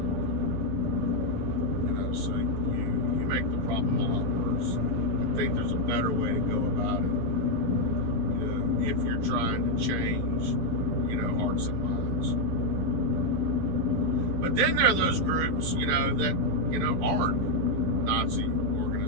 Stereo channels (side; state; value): left; late; 11 ms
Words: hard. So you make the problem a lot worse. I think there's a better way to go about it, if you're trying to change, hearts and minds. But then there are those groups, that, aren't Nazi